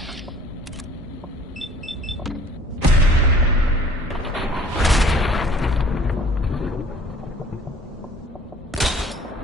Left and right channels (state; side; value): normal; both; correlation 0.52